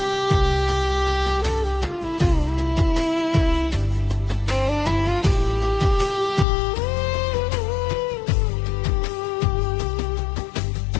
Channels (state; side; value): drops out; right; at 6.5 s